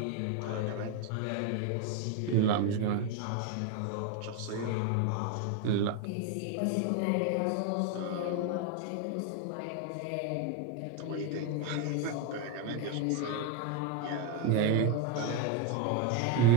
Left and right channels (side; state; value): both; different; correlation 0.02